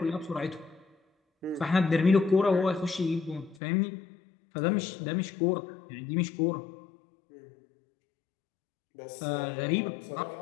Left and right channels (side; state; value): right; drops out; at 3.6 s